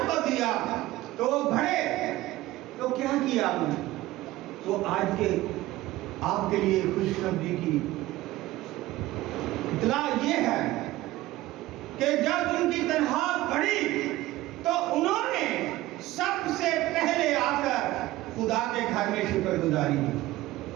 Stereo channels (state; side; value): quieter; left; 17.1 dB